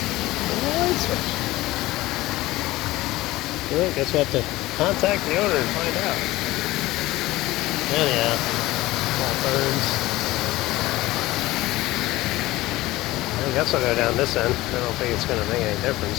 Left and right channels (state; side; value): quieter; right; 18.1 dB